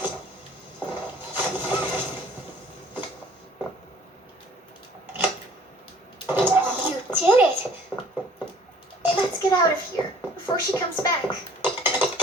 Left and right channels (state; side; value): normal; both; correlation 0.54